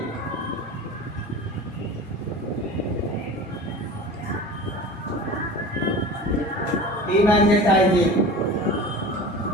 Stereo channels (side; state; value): both; normal; correlation 0.36